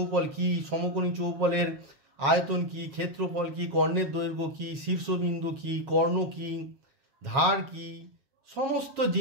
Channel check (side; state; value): left; late; 7.3 ms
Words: কি, সমকোণী চৌপলের আয়তন কি, ক্ষেত্রফল কি, কর্ণের দৈর্ঘ্য কি, শীর্ষবিন্দু কি, কর্ণ কি, ধার কি, সমস্ত